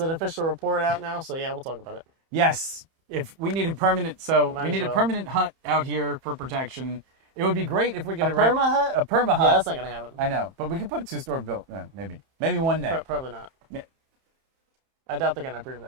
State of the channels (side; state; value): left; late; 31 ms